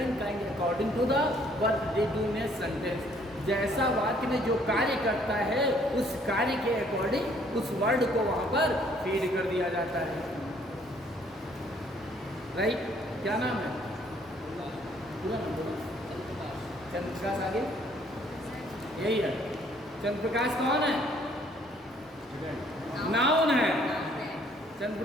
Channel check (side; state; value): both; normal; correlation 0.62